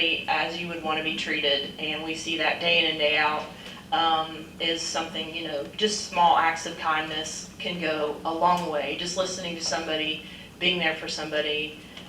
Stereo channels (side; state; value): both; identical; correlation 1.00